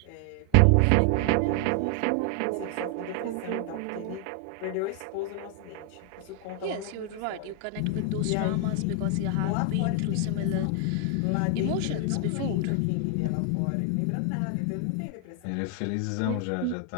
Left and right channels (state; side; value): different; both; correlation 0.00